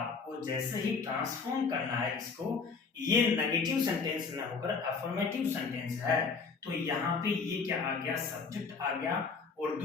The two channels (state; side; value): quieter; right; 5.0 dB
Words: जैसे ही ट्रांसफॉर्म करना है इसको, ये नेगेटिव सेंटेंस ना होकर अफर्मेटिव सेंटेंस है, तो यहाँ पे ये क्या आ गया, सब्जेक्ट आ गया। और